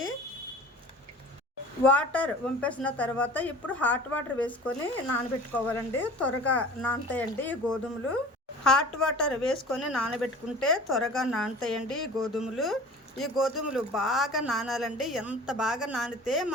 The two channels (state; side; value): normal; both; correlation 0.42